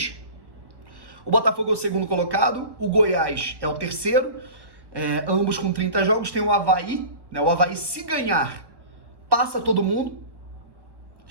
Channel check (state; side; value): late; left; 1.1 ms